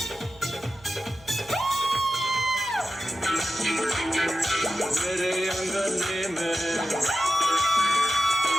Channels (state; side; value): noise; right; hum, 25 dB below the sound